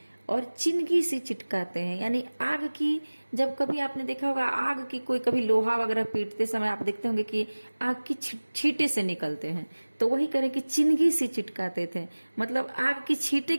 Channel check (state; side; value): inverted; both; correlation -1.00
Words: और चिनगी सी चिटकाते हैं। यानी आग की, जब कभी आपने देखा होगा आग की, कोई कभी लोहा वगैरह पीटते समय आप देखते होंगे कि आग की छींटे से निकलते हैं, तो वही करें कि चिनगी सी चिटकाते थे, मतलब आग की छींटे